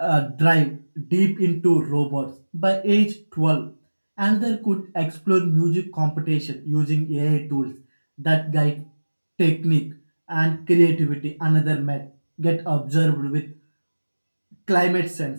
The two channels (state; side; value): inverted; both; correlation -1.00